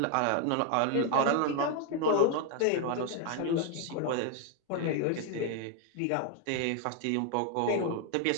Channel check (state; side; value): different; both; correlation 0.00